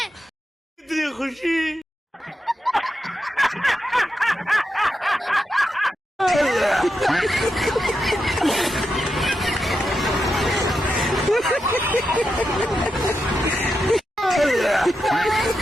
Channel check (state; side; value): normal; both; correlation 0.87